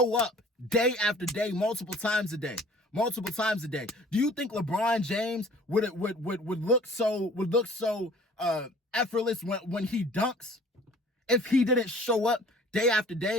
up day after day, multiple times a day. Do you think LeBron James would look so effortless when he dunks if he didn't show up day after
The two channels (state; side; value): normal; both; correlation 0.51